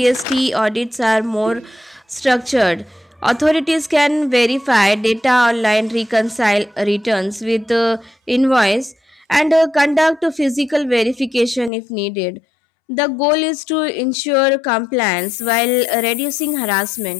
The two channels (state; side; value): drops out; right; at 11.7 s